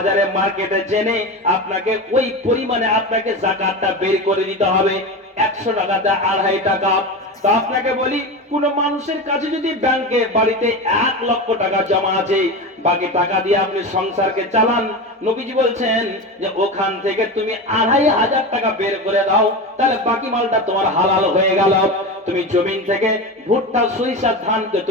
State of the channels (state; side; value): normal; both; correlation 0.24